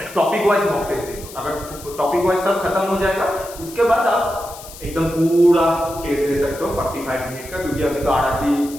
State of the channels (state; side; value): noise; left; hiss, 16 dB below the sound